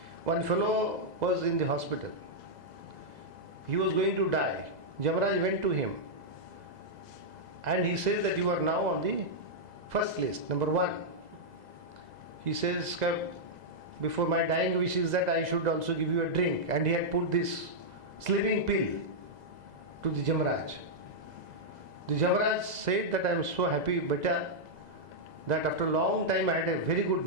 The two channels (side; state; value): left; late; 2.0 ms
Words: One fellow was in the hospital. He was going to die. Jamraj went to him and he says that you are now on the first list, number 1. He says, before my dying wish is that I should also give you a drink. And he had put this sleeping pill to the Jamraj. The Jamraj said that I am so happy, beta, that after a long time I had a very good